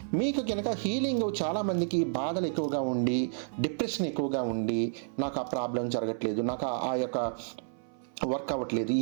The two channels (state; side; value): silent; left; 57 dB below the other